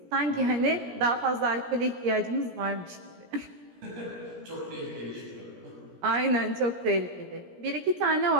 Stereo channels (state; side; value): late; left; 17 ms